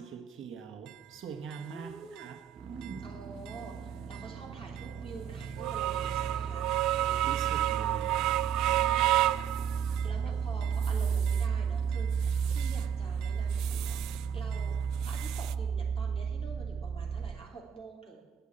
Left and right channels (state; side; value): quieter; left; 8.5 dB